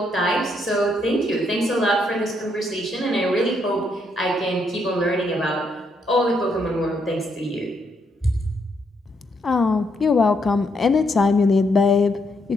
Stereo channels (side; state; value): both; normal; correlation 0.75